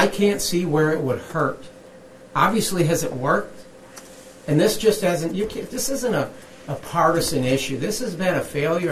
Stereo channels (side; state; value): both; identical; correlation 1.00